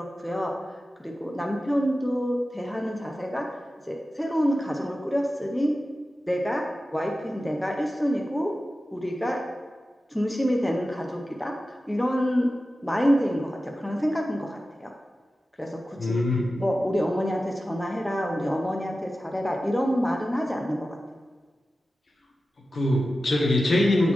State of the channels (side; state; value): both; normal; correlation 0.94